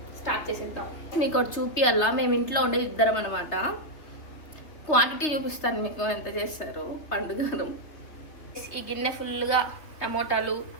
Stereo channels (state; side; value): late; right; 3.3 ms